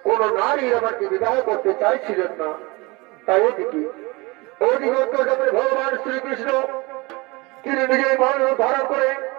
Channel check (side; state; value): left; quieter; 25.0 dB